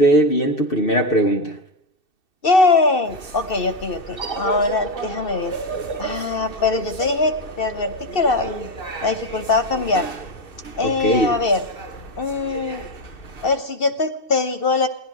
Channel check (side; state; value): right; late; 2.7 ms